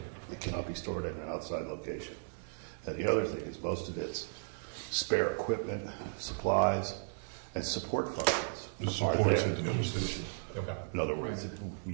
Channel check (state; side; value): silent; left; 54 dB below the other